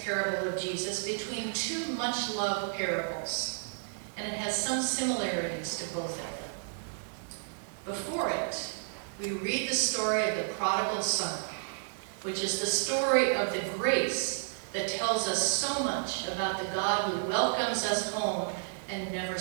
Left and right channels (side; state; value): left; silent; digital silence